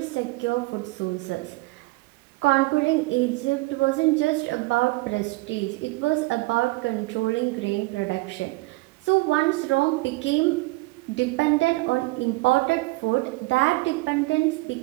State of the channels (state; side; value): quieter; left; 22.7 dB